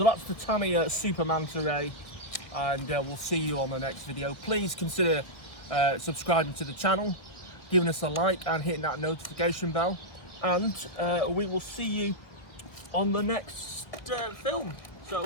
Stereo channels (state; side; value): late; right; 1.4 ms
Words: that's the Tamiya Super Manta Ray, and we'll see you on the next video. Please consider subscribing to the channel, giving us a like and hitting that notification bell, and we will see you on the next film.